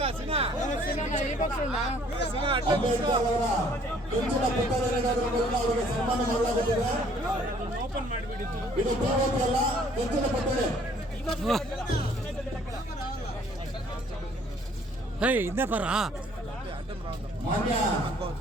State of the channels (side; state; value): both; normal; correlation 0.59